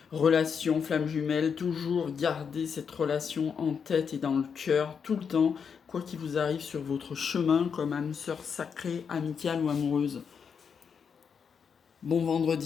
relations flamme jumelle. Toujours garder cette relation en tête et dans le cœur tout le temps, quoi qu'il vous arrive sur votre chemin comme âme sœur sacrée, amicale ou amoureuse. Bon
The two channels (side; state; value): right; quieter; 6.6 dB